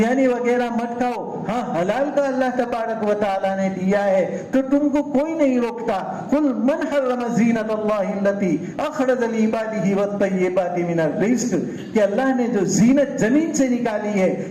وغیرہ مت کھاؤ. ہاں حلال کا اللہ تبارک و تعالی نے دیا ہے تو تم کو کوئی نہیں روکتا. قل من حرم زینت اللہ التی اخرج لعباده والطیبات من الرزق, کہ اللہ نے جو زینت زمین سے نکالی ہے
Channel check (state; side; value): identical; both; correlation 1.00